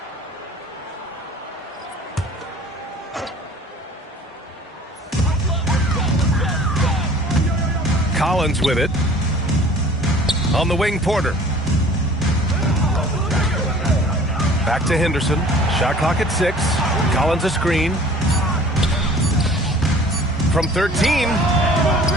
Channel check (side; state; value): both; normal; correlation 0.48